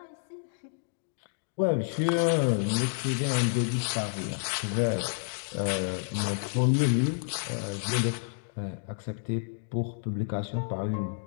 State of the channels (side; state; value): right; silent; digital silence